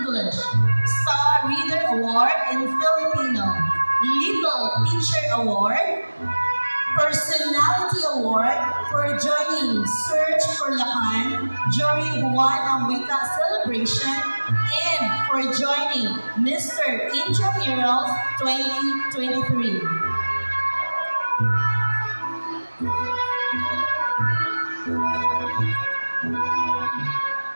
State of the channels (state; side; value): inverted; both; correlation -1.00